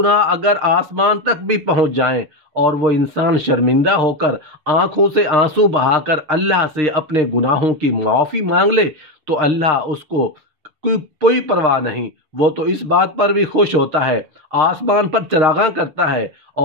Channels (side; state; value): left; late; 6.5 ms